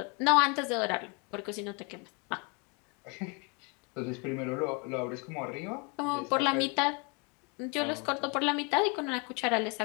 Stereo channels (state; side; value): quieter; right; 32.6 dB